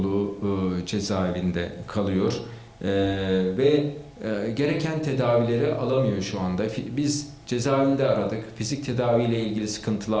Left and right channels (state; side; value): identical; both; correlation 1.00